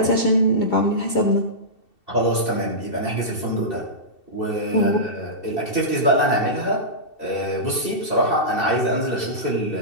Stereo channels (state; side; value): late; right; 2.7 ms